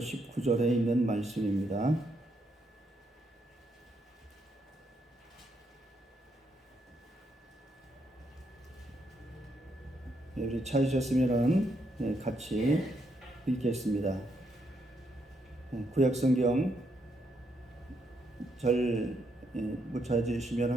있는 말씀입니다. 우리 찾으셨으면 같이 읽겠습니다. 구약 성경 절 못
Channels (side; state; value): both; normal; correlation 0.77